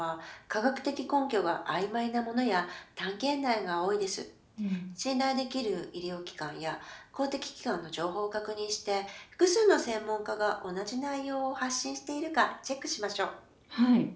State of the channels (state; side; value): identical; both; correlation 1.00